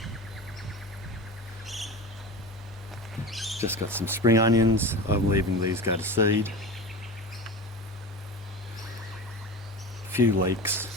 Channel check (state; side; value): normal; both; correlation 0.30